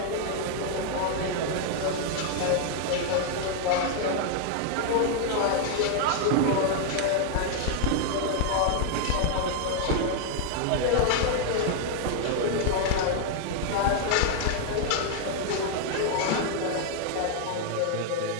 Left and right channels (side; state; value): both; different; correlation 0.00